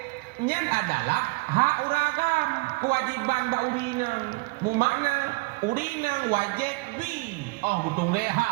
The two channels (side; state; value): left; quieter; 26.4 dB